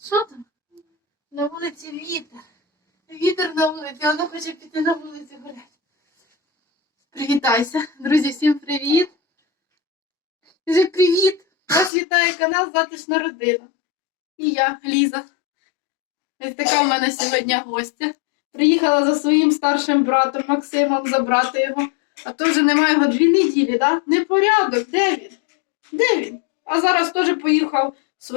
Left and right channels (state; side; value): drops out; right; at 11.9 s